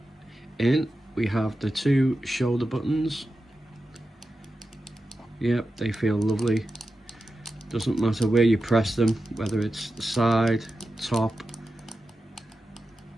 in. We have the two shoulder buttons. Yep, they feel lovely. Doesn't matter where you press them, whether it's the side, top,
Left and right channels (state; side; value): normal; both; correlation 0.92